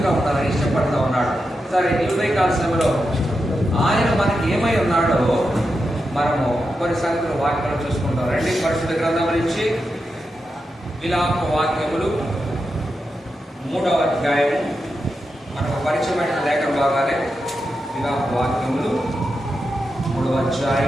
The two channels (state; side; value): normal; both; correlation 0.88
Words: ఉండాలని ఇష్టపడుతూ ఉన్నాడు. సరే, ఈ ఉదయకాల సమయంలో ఆయన మనకి ఏమై ఉన్నాడో మనము కొన్ని సంగతులు వాక్యాలు చూసుకుంటాం. రండి, పరిశుద్ధ గ్రంథం నుంచి విలాప వాక్యములు 3వ అధ్యాయము. మనకు పరిచయమైన లేఖన భాగాలే విలాప వాక్యములు 3వ